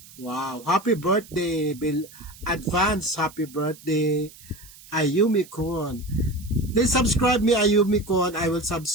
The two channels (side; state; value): right; noise; hiss, 21 dB below the sound